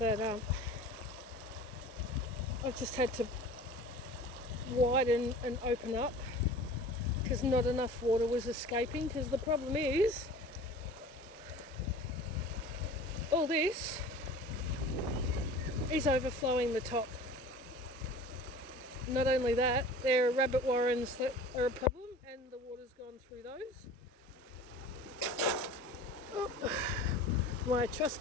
I've just had to widen and open up because not enough water was escaping. Because the problem is all this is overflowing the top. Not only that, there are rabbit warrens that are a problem and the water's gone through those. Oh, my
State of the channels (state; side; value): normal; both; correlation 0.41